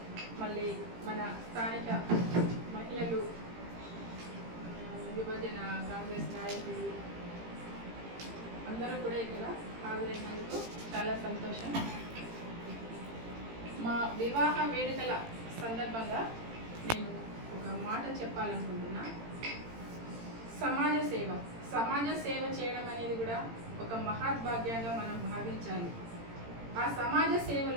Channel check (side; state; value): left; late; 18 ms